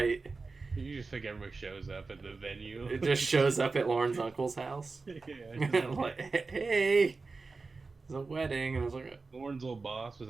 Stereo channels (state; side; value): quieter; left; 4.0 dB